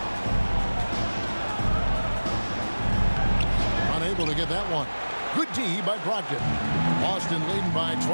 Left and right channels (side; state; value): both; inverted; correlation -1.00